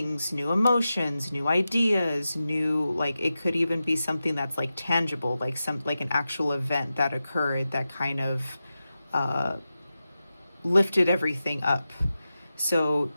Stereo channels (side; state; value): both; inverted; correlation -0.92